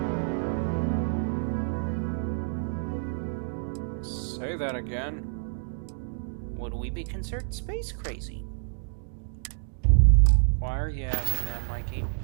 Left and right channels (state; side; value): silent; left; digital silence